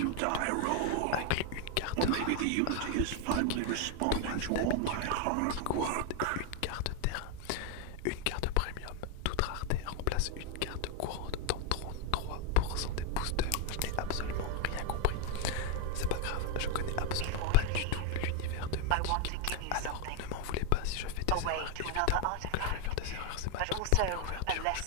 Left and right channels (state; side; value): different; both; correlation 0.01